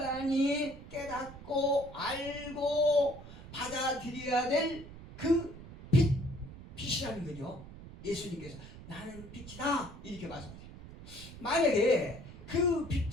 깨닫고 알고 받아들여야 될 그 빛이라는 거죠. 예수님께서 나는 빛이다 이렇게 말씀하세요. 만약에 그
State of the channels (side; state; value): right; noise; rumble, 15 dB below the sound